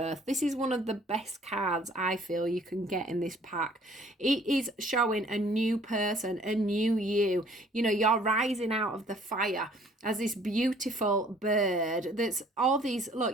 This is one of the best cards I feel you can get in this pack. It is showing a new person, a new you. You're rising out of the fire as this beautiful bird that's all these,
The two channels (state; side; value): normal; both; correlation 0.57